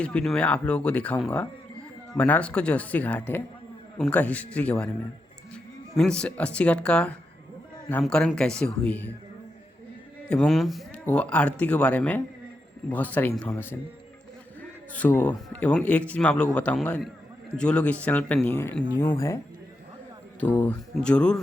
वीडियो में आप लोगों को दिखाऊंगा बनारस का जो अस्सी घाट है उनका हिस्ट्री के बारे में। मीन्स अस्सी घाट का नामकरण कैसे हुई है एवं वो आरती के बारे में बहुत सारी इन्फॉर्मेशन। एवं एक चीज़ मैं आप लोगों को बताऊंगा, जो लोग इस चैनल पर न्यू है तो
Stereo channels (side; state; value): both; normal; correlation 0.85